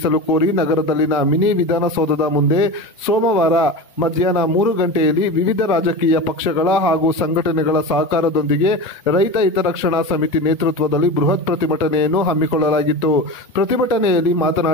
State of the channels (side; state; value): both; normal; correlation 0.27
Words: ಕೋರಿ ನಗರದಲ್ಲಿನ ಮಿನಿ ವಿಧಾನಸೌಧದ ಮುಂದೆ ಸೋಮವಾರ ಮಧ್ಯಾಹ್ನ 3 ಗಂಟೆಯಲ್ಲಿ ವಿವಿಧ ರಾಜಕೀಯ ಪಕ್ಷಗಳ ಹಾಗೂ ಸಂಘಟನೆಗಳ ಸಹಕಾರದೊಂದಿಗೆ ರೈತ ಹಿತರಕ್ಷಣಾ ಸಮಿತಿ ನೇತೃತ್ವದಲ್ಲಿ ಬೃಹತ್ ಪ್ರತಿಭಟನೆಯನ್ನು ಹಮ್ಮಿಕೊಳ್ಳಲಾಗಿತ್ತು. ಪ್ರತಿಭಟನೆಯಲ್ಲಿ